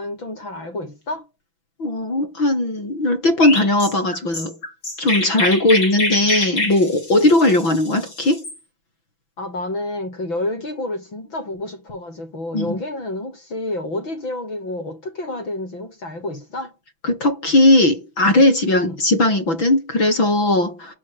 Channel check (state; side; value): late; right; 6.0 ms